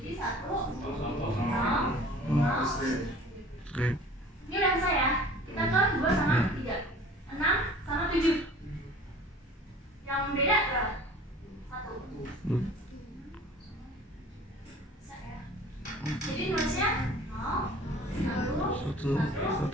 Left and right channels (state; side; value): normal; both; correlation 0.46